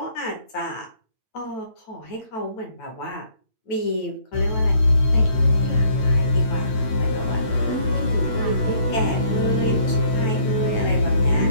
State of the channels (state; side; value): late; right; 9.1 ms